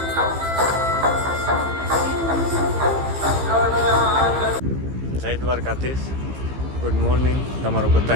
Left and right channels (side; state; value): left; late; 15 ms